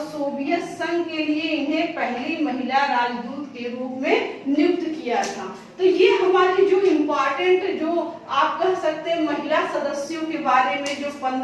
सोवियत संघ के लिए इन्हें पहली महिला राजदूत के रूप में नियुक्त किया था। तो ये हमारी जो इम्पोर्टेंट, जो आप कह सकते हैं महिला सदस्यों के बारे में, जो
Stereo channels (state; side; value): identical; both; correlation 1.00